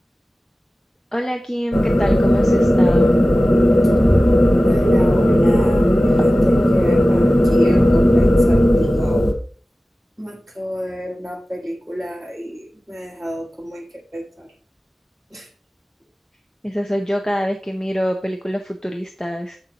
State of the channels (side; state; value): both; normal; correlation 0.96